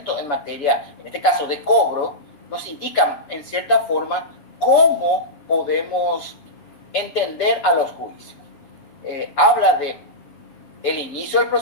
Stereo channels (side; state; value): right; late; 7.0 ms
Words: en materia, en este caso de cobro, nos indica en cierta forma cómo podemos entender a los juicios. Habla de el inicio del